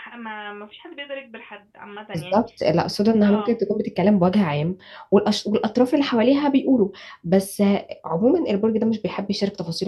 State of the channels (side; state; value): both; identical; correlation 1.00